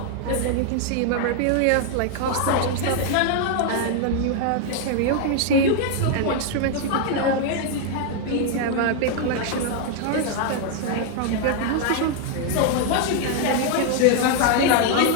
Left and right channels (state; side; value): different; both; correlation 0.00